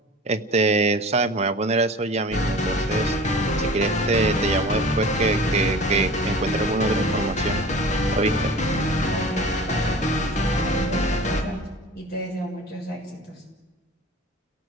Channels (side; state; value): both; normal; correlation 0.40